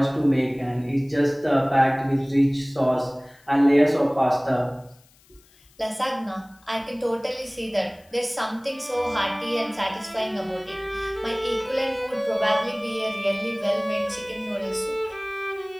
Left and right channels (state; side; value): noise; left; hiss, 30 dB below the sound